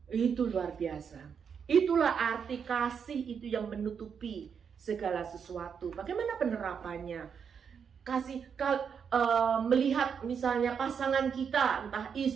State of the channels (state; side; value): quieter; left; 6.9 dB